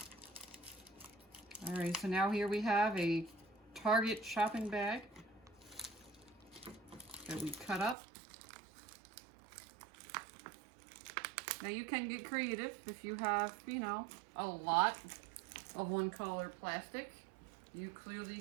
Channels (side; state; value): left; drops out; at 8.0 s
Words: Alright, so now here we have a Target shopping bag that we cut up. Now you can get creative if you have, you know, a lot of one color plastic. You clearly